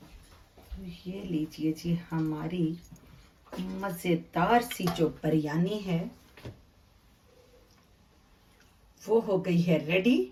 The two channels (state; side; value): identical; both; correlation 1.00